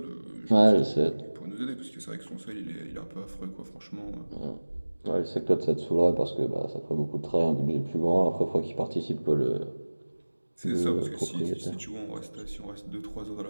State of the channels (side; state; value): both; inverted; correlation -1.00